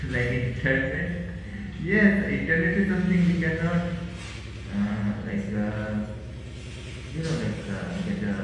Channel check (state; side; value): identical; both; correlation 1.00